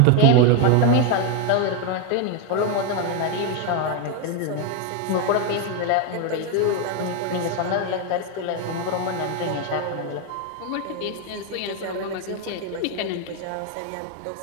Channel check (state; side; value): different; both; correlation 0.01